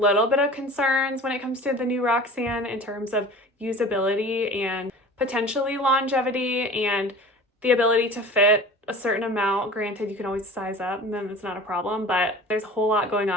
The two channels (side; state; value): both; normal; correlation 0.40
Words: bit of concerns when it comes to the new Roxanne in terms of usability and potentially longevity and the ability to fit a certain amount. Granted, you can always size up and then it's not a problem, but there's a whole lot going